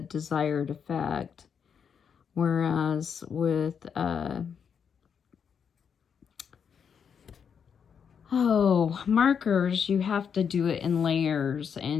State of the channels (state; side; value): quieter; right; 7.1 dB